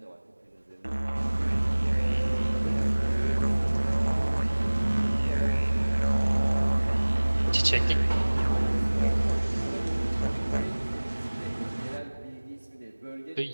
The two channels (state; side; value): inverted; both; correlation -1.00